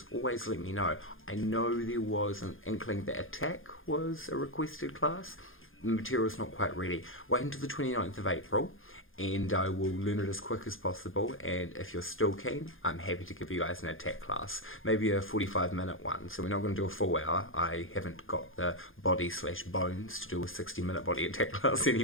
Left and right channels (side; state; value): right; late; 0.59 ms